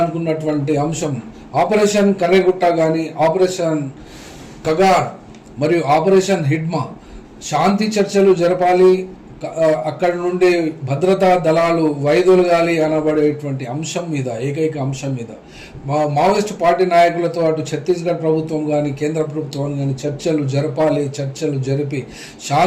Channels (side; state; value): both; identical; correlation 1.00